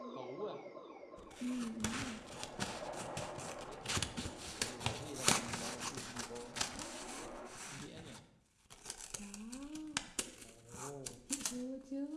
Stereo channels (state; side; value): identical; both; correlation 1.00